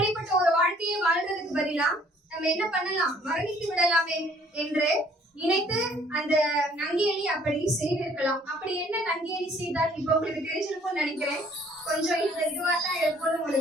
ஒரு வாழ்க்கையை வாழ்றதுக்கு பதிலா நம்ம என்ன பண்ணலாம், மரணித்து விடலாமே என்று நினைத்து அந்த நங்கேலி அப்படி செய்திருக்கலாம். அப்படி என்ன நங்கேலி செய்தால் இப்ப உங்களுக்கு தெரிஞ்சிருக்கும்னு நினைக்கிறேன். கொஞ்சம் இதுவா தான் இருக்கும்னு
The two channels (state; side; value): normal; both; correlation 0.59